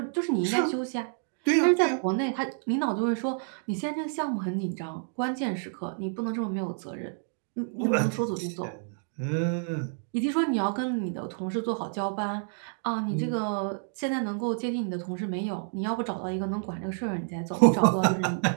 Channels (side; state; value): left; silent; digital silence